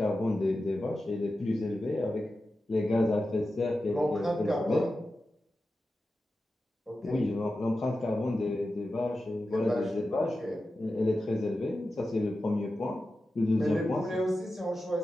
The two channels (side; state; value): both; normal; correlation 0.92